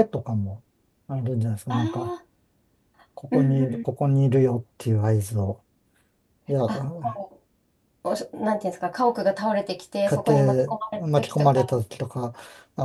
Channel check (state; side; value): identical; both; correlation 1.00